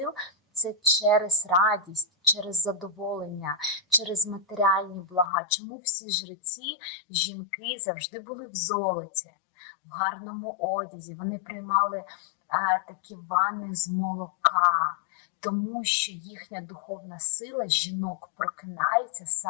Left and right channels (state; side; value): drops out; right; at 5.3 s